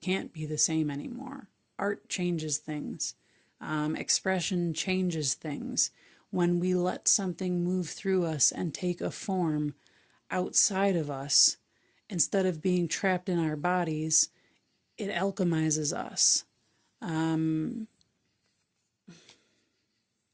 can't be the same anymore. Art changes things. Expression changes things. When we let something move through us and take a form outside of us, instead of being trapped in our bodies, it alchemizes us. And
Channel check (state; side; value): identical; both; correlation 1.00